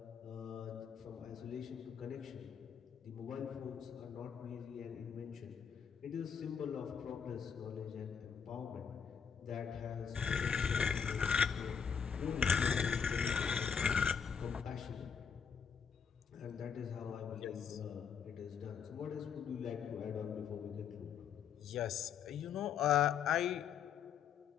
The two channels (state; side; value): quieter; right; 7.1 dB